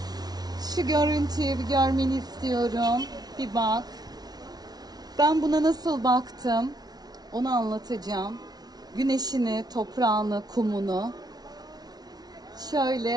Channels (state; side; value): late; left; 0.19 ms